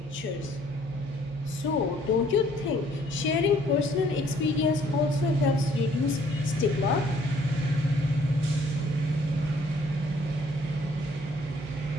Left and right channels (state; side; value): normal; both; correlation 0.61